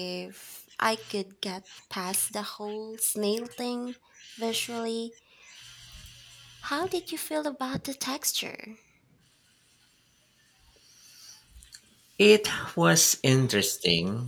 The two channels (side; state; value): both; identical; correlation 1.00